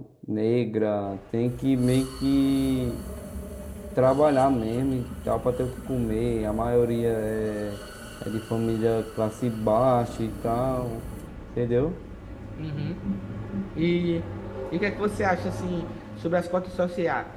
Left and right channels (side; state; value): both; identical; correlation 1.00